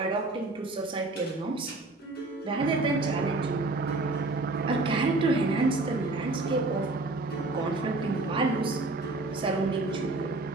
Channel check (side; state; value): left; quieter; 3.1 dB